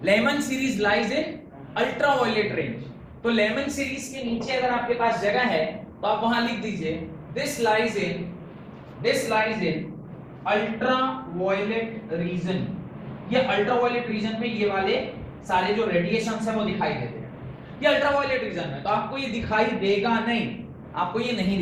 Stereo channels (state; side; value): identical; both; correlation 1.00